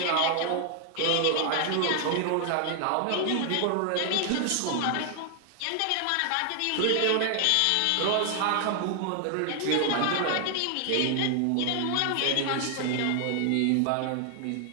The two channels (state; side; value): different; both; correlation 0.00